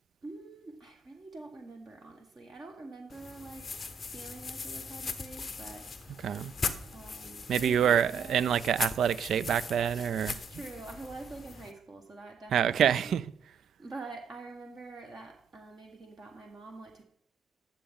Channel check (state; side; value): quieter; left; 6.4 dB